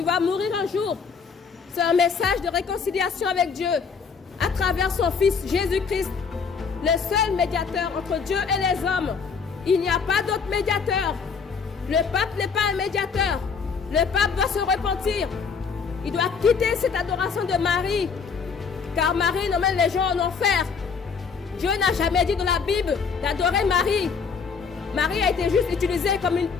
vas mourir un jour. C'est un message de réconciliation avec Dieu à travers son Fils Jésus-Christ, le seul médiateur entre Dieu et les hommes. Il n'y a pas d'autre médiateur. Le pape n'est pas un médiateur. Le pape doit se repentir. Il doit quitter cette adoration de Marie, car Marie emmène les gens en enfer. Dieu n'a jamais dit dans la Bible d'adorer Marie. Marie a été juste utilisée comme une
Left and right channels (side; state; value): right; quieter; 5.7 dB